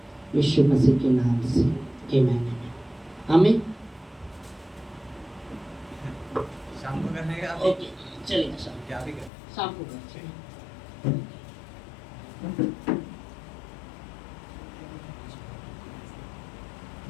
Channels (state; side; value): drops out; right; at 9.3 s